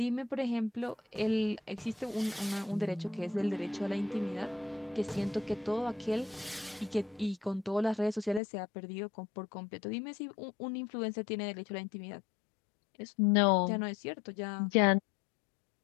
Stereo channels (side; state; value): right; drops out; at 8.4 s